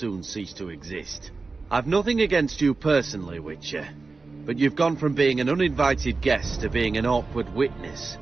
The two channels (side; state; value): left; quieter; 4.0 dB